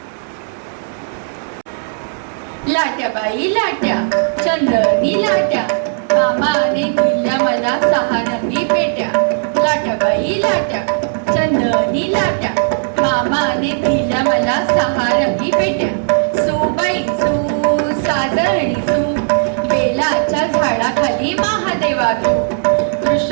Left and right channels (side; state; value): left; silent; digital silence